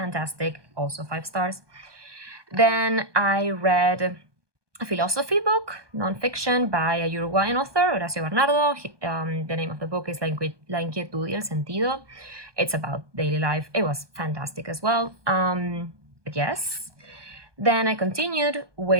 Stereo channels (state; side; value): late; left; 1.2 ms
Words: also 5 stars. Then I read a philosophy book, nonfiction, by a Uruguayan author, Horacio Bernardo. The name of the book is La Inquietud y el Sentido. It's about daily life. It was fantastic as well. But yes. Then I continued